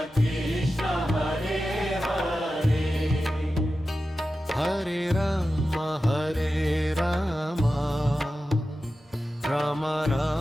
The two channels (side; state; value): both; normal; correlation 0.93